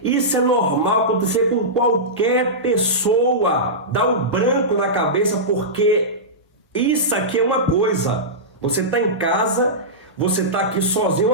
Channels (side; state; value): both; normal; correlation -0.15